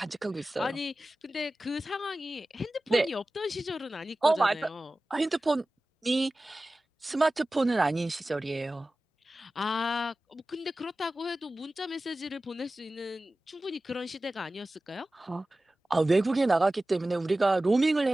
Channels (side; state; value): both; normal; correlation 0.96